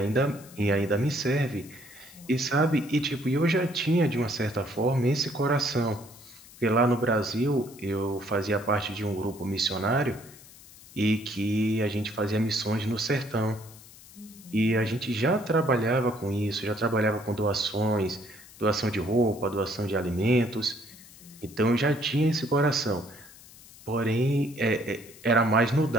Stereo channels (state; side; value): noise; left; hiss, 21 dB below the sound